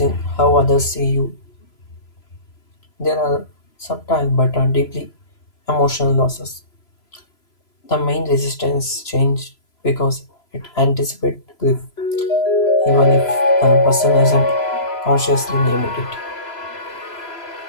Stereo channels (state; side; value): late; right; 3.0 ms